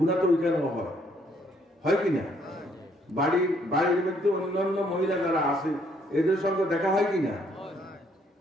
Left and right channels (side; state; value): both; normal; correlation 0.67